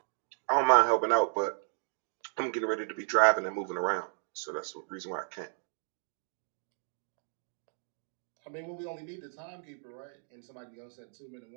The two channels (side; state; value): left; silent; digital silence